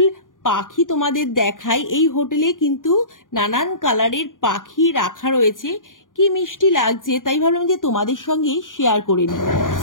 পাখি তোমাদের দেখাই। এই হোটেলে কিন্তু নানান কালারের পাখি রাখা রয়েছে, কি মিষ্টি লাগছে, তাই ভাবলাম যে তোমাদের সঙ্গে শেয়ার করে নিই।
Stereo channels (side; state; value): right; late; 0.89 ms